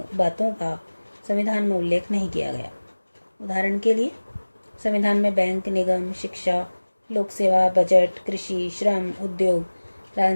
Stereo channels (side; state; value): both; inverted; correlation -1.00